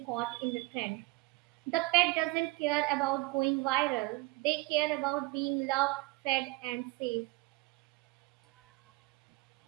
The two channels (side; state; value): left; quieter; 24.4 dB